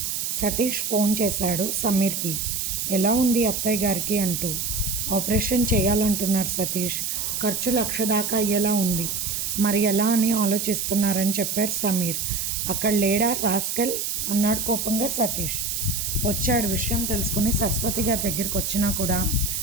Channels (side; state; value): right; noise; hiss, 2 dB below the sound